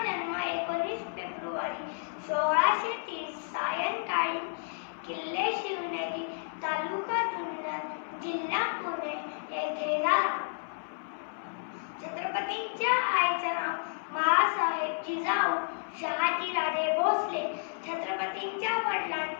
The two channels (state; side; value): silent; right; 56 dB below the other